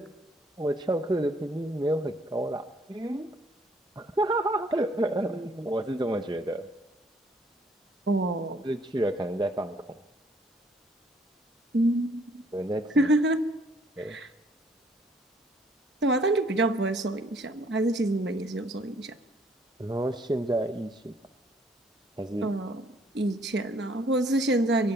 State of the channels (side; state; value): both; normal; correlation 0.63